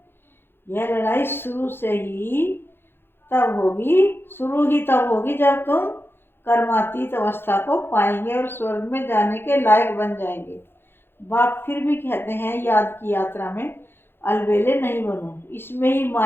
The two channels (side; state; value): right; late; 0.11 ms